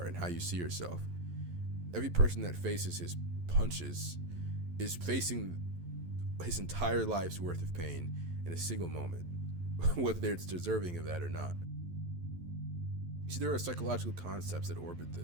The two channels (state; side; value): late; left; 11 ms